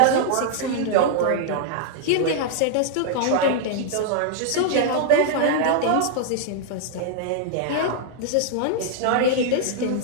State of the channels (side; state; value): both; different; correlation -0.01